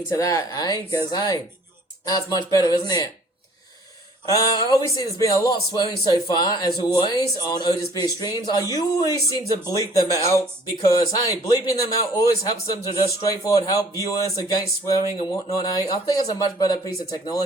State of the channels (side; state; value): both; normal; correlation 0.54